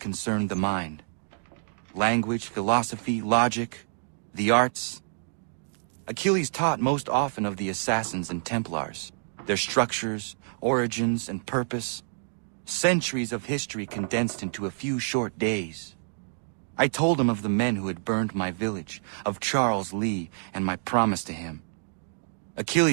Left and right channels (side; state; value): left; silent; digital silence